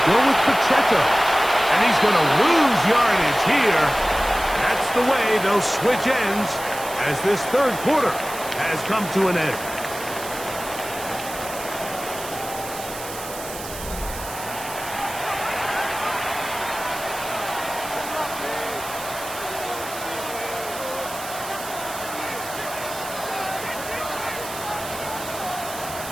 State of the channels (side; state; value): right; noise; hiss, 11 dB below the sound